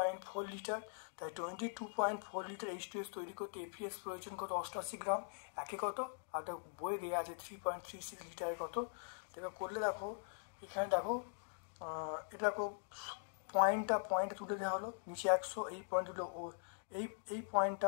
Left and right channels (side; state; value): right; silent; digital silence